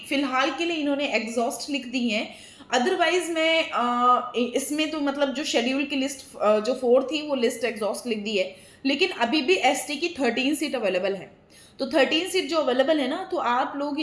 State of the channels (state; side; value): identical; both; correlation 1.00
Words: फिलहाल के लिए इन्होंने एग्जॉस्ट लिख दी है। अदरवाइज मैं इसमें तो मतलब जो शेड्यूल की लिस्ट जो 4 थी वो लिस्ट एग्जॉस्ट लिख दी है, लेकिन अभी भी एसटी की 13 सीट अवेलेबल है। तो 13 सीट जो अवेलेबल है ना, तो आप लोग